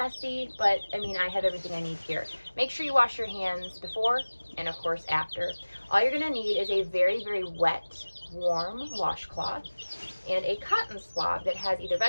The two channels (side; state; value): both; inverted; correlation -1.00